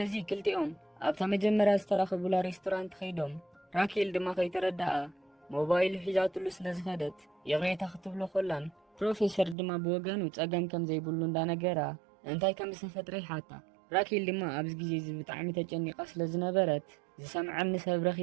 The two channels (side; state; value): left; drops out; at 9.6 s